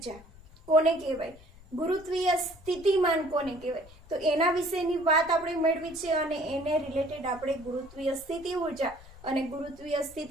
કોને કહેવાય, ગુરુત્વીય સ્થિતિમાન કોને કહેવાય, તો એના વિશેની વાત આપણે મેળવી છે અને એને રિલેટેડ આપણે ગુરુત્વીય સ્થિતિ ઊર્જા અને ગુરુત્વીય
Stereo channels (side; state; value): left; noise; rumble, 21 dB below the sound